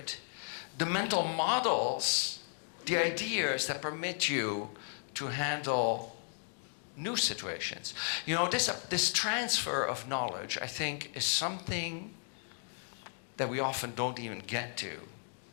the mental models, the ideas that permit you to handle new situations. This transfer of knowledge, I think, is something that we often don't even get to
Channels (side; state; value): right; silent; 55 dB below the other